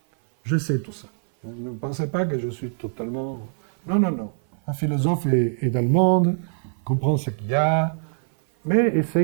Je sais tout ça. Ne pensez pas que je suis totalement... Non, non, non. Un philosophe est dans le monde, comprend ce qu'il y a, mais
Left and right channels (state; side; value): silent; left; 57 dB below the other